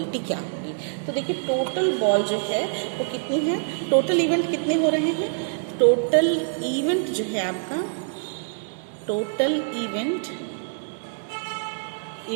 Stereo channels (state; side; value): silent; left; 62 dB below the other